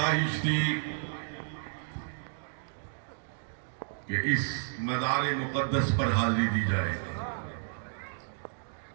تھی کہ اس مزار مقدس پر حاضری دی جائے،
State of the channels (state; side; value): silent; left; digital silence